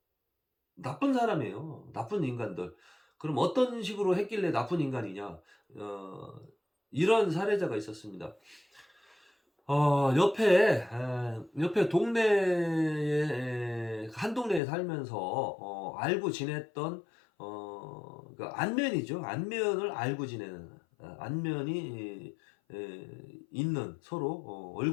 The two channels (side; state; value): right; drops out; at 14.6 s